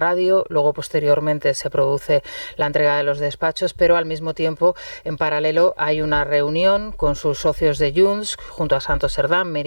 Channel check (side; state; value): both; inverted; correlation -1.00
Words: luego posteriormente se produce produce la entrega de los despachos, pero al mismo tiempo, en paralelo, hay una reunión con sus socios de Junts, junto a Santos Cerdán,